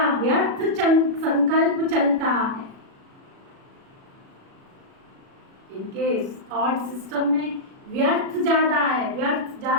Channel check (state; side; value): late; left; 37 ms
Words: व्यर्थ संकल्प चलता है, इनके थॉट सिस्टम में व्यर्थ ज्यादा है, व्यर्थ